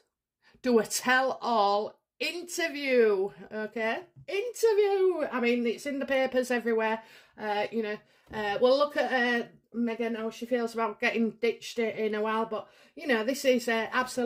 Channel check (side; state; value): both; identical; correlation 1.00